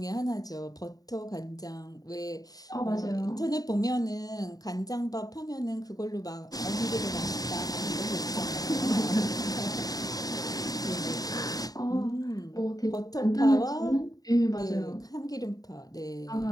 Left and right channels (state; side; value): late; right; 0.18 ms